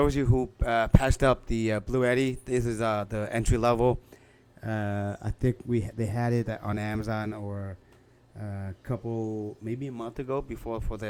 of you who passed up the BLUETTI, this is the entry level. I think they had it on Amazon or a couple, maybe a month ago before for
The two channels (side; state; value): both; identical; correlation 1.00